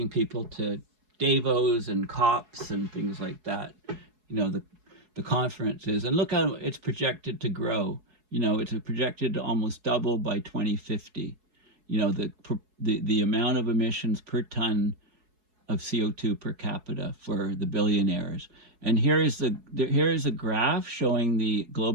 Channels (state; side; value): late; left; 4.7 ms